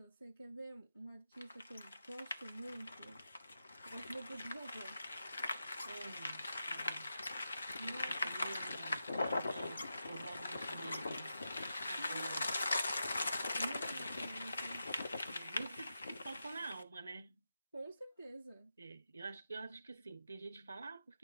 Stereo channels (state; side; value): inverted; both; correlation -0.89